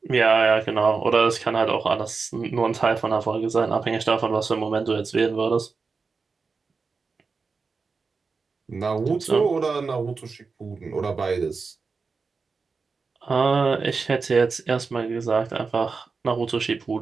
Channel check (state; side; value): quieter; left; 4.7 dB